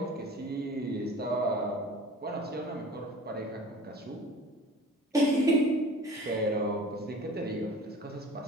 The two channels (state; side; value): normal; both; correlation 0.43